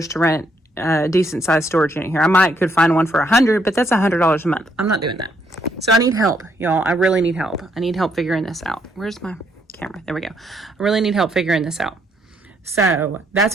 to rent a decent sized storage unit here. I could find one for $100, but that's $100 a month. I'm not doing that. So I need help, y'all. I really need help. I need help figuring this out. Where's my camera? There we go. I really need help figuring this out. So that's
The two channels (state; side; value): normal; both; correlation 0.72